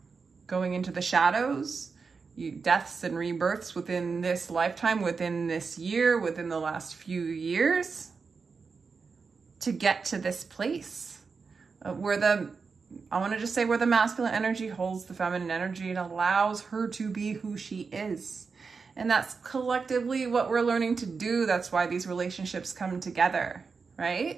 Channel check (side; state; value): left; quieter; 5.0 dB